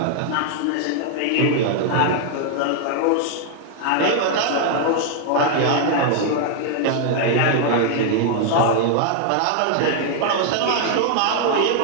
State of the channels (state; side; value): different; both; correlation 0.00